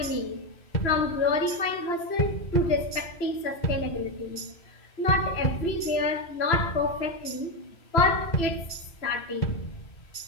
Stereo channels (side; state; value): right; late; 2.9 ms